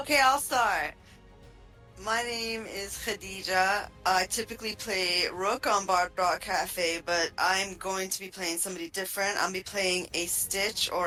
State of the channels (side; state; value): both; identical; correlation 1.00